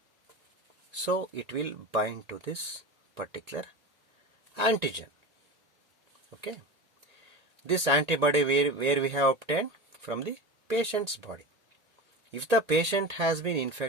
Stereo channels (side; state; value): left; late; 1.8 ms